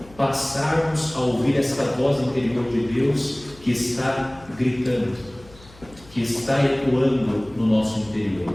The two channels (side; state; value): left; noise; hum, 23 dB below the sound